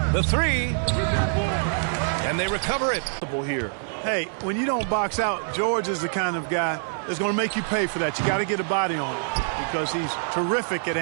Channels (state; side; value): silent; left; digital silence